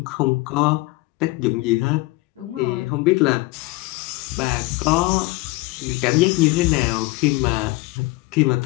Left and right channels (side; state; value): right; quieter; 21.9 dB